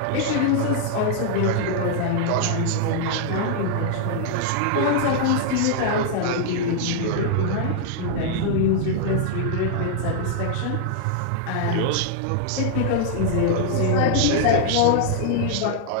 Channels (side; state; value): both; different; correlation -0.01